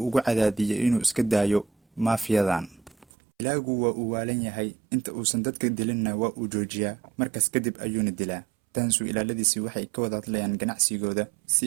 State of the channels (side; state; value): left; drops out; at 3.1 s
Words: ugu cadaadiyo inuu iska daayo maafiyadan. Dilaagu waa uu waalan yahay, inta uusan dadka dilinna waa uu joojiyaa, markaas kadib ayuuna dilaa. Dansu ilaaladiisii waxay ka wada hadlayaan ganacsigooda